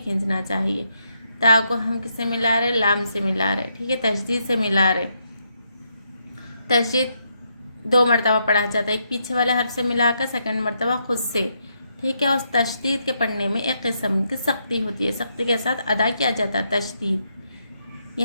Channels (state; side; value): inverted; both; correlation -0.78